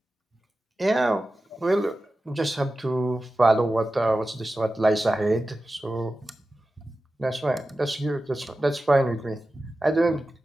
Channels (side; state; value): both; normal; correlation 0.94